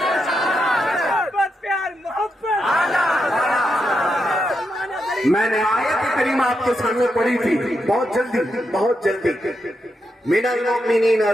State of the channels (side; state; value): both; normal; correlation 0.84